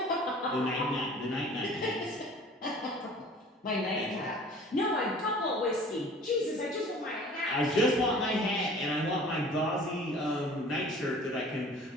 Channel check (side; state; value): both; normal; correlation 0.47